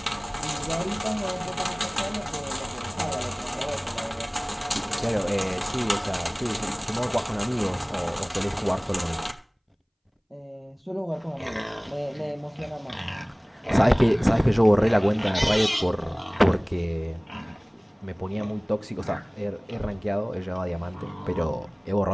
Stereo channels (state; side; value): identical; both; correlation 1.00